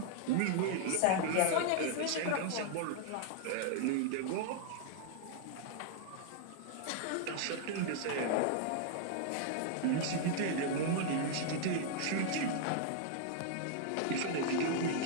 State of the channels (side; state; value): both; different; correlation 0.00